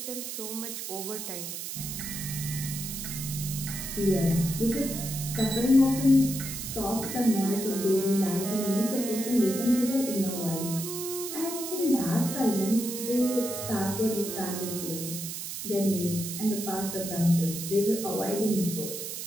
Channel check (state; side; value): noise; right; hiss, 6 dB below the sound